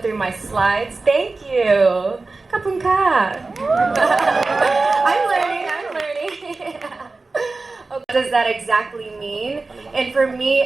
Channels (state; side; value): quieter; left; 3.6 dB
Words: my slides? Thank you. Kapun ka. I'm learning. What does that exactly mean? And for me